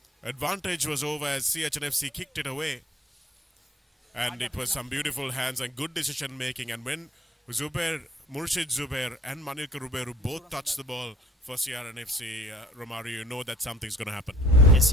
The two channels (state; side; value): normal; both; correlation 0.54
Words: Advantage was over as CH&FC kicked it away. And it was some beautiful hands and good decision making. And when Murshid Zubair and Manilka Ruberu both touched the ball for CR&FC, Romario, you know that something's going to happen. Yes,